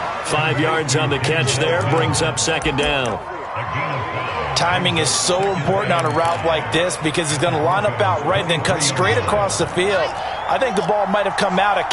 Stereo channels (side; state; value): both; identical; correlation 1.00